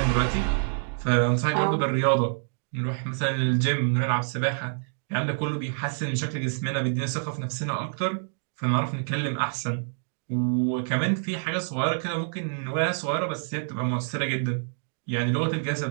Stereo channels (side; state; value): left; silent; digital silence